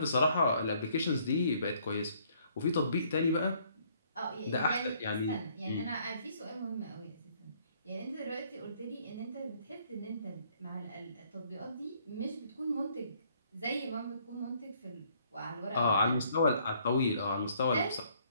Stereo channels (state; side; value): inverted; both; correlation -0.64